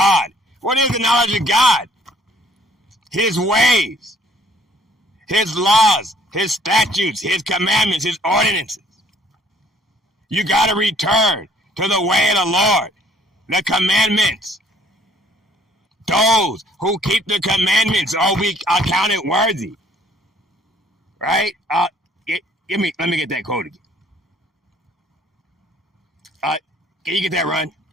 What is the knowledge of God? His ways, his laws, his statutes, his commandments, his ordinances. You got to return to the way of the Lord, the commandments. Those who keep the commandments will be accounted worthy. Right? Let me get that quote again. Can you get that, Run?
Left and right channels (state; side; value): normal; both; correlation 0.60